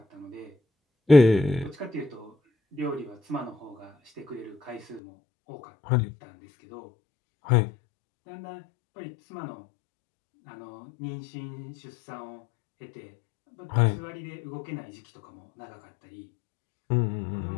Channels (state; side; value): drops out; right; at 5.0 s